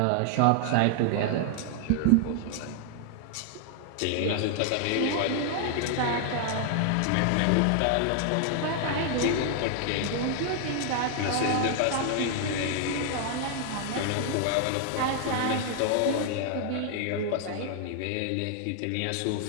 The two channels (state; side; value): different; both; correlation 0.00